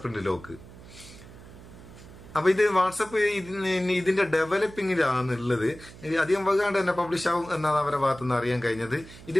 പ്രിന്റ് ലോക്ക്. അപ്പൊ ഇത് വാട്സപ്പ് ഇതിന്റെ ഡെവലപ്പിംഗിലാണുള്ളത്. അധികം വൈകാണ്ട് തന്നെ പബ്ലിഷ് ആവും എന്നാണ് അവരുടെ ഭാഗത്തുനിന്ന് അറിയാൻ കഴിഞ്ഞത്.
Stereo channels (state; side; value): noise; right; hum, 18 dB below the sound